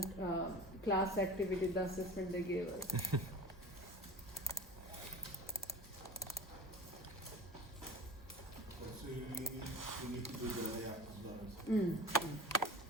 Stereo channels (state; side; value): normal; both; correlation 0.35